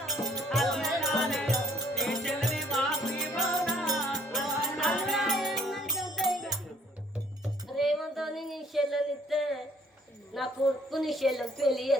రేవంతోని నీ చెల్లెనిస్తే నా కొడుకు నీ చెల్లెని పెళ్లి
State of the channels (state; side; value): normal; both; correlation 0.62